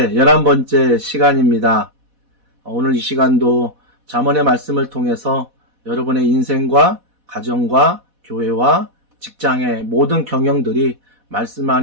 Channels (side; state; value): left; late; 4.1 ms